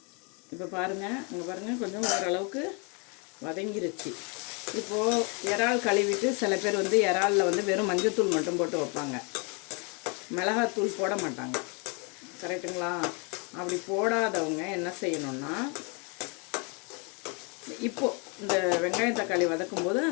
இப்போ பாருங்கள், இங்கே பாருங்கள், கொஞ்சம் ஓரளவுக்கு வதங்கிருச்சு. இப்போது இறால் கழுவிட்டு சில பேர் வந்து இறாலில் வந்து வெறும் மஞ்சத்தூள் மட்டும் போட்டு வைப்பாங்க, மிளகாத்தூள் போட மாட்டாங்க. கரெக்டுங்களா? அப்படி போடாதவங்க என்ன செய்யணும்னா, இப்போது இந்த வெங்காயம் தக்காளி வதக்கும்போது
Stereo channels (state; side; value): quieter; right; 34.1 dB